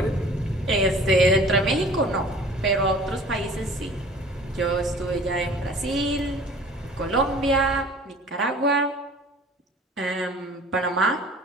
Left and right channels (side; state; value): both; normal; correlation 0.47